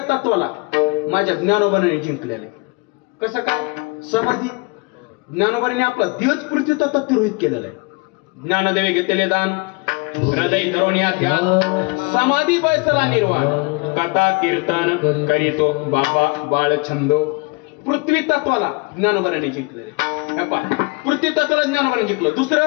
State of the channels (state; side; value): quieter; right; 28.9 dB